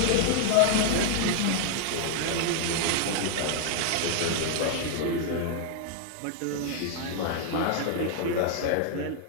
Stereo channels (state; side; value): different; both; correlation 0.00